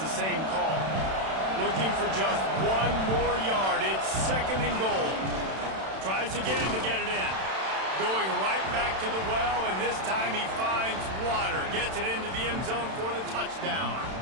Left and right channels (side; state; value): left; late; 31 ms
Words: the same call. Looking for just 1 more yard. It's second and goal. Tries again to get it in. Going right back to the well, and this time he finds water. Gets it into the end zone for the touchdown.